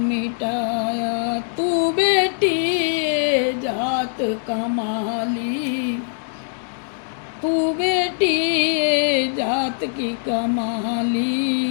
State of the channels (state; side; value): silent; right; digital silence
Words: तू बेटी ये जात कमाली, तू बेटी ये जात की